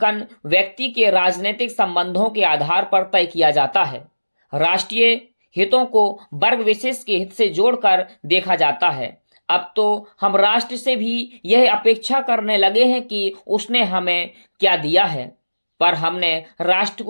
व्यक्ति के राजनीतिक संबंधों के आधार पर तय किया जाता है। राष्ट्रीय हितों को वर्ग विशेष के हित से जोड़कर देखा जाता है। अब तो हम राष्ट्र से भी यह अपेक्षा करने लगे हैं कि उसने हमें क्या दिया है, पर हमने राष्ट्र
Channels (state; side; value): inverted; both; correlation -1.00